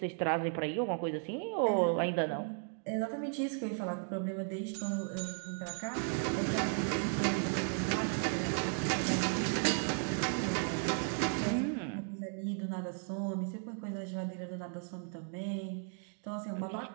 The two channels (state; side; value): silent; left; 54 dB below the other